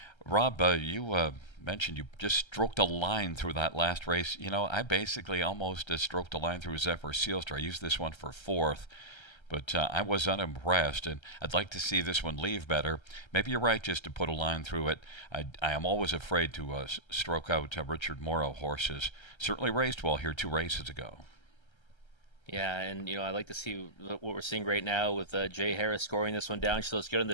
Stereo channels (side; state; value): right; late; 1.3 ms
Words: Rob, you mentioned you just stroked a line through that last race. I basically almost stroked a line through Zephyr Sealster. I used this one for 4th. But I was unimpressed, and I'd like to see this one leave better. Maybe you're right just to put a line through it. I am always afraid to stroke out Richard Morrow horses. Certainly raced well here 2 races ago. Yeah, and I like to see what we're seeing right now with Jay Harris scoring this one down. She looks good on